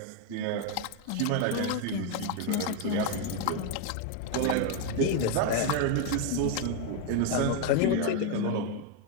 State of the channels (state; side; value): different; both; correlation 0.01